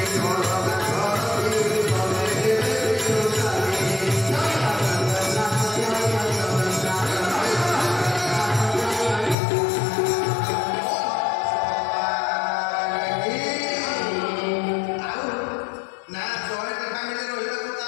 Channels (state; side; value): drops out; right; at 9.3 s